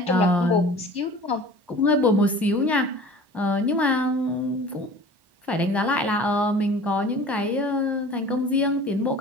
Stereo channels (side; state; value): left; late; 1.1 ms